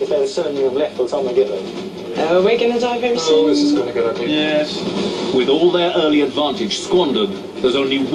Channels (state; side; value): identical; both; correlation 1.00